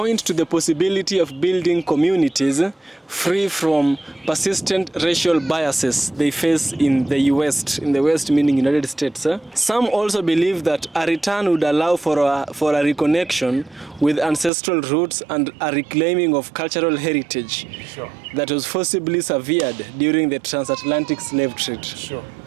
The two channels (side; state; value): left; drops out; at 14.5 s